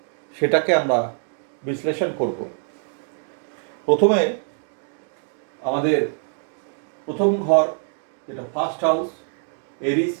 সেটাকে আমরা বিশ্লেষণ করব। প্রথমে আমাদের প্রথম ঘর, যেটা ফার্স্ট হাউস, এরিস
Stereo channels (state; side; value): silent; left; 63 dB below the other